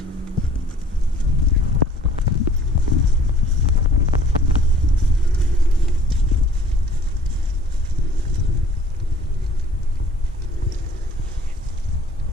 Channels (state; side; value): normal; both; correlation 0.53